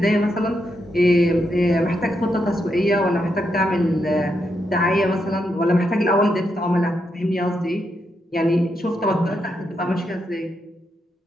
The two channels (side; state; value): both; normal; correlation 0.82